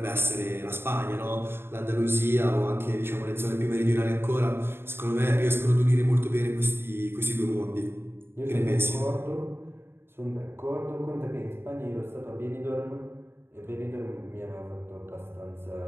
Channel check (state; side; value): late; left; 0.11 ms